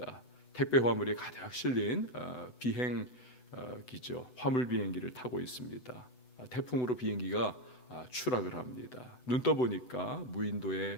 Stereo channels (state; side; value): late; right; 8.0 ms